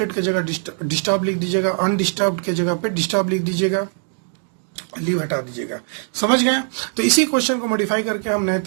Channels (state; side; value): silent; left; 57 dB below the other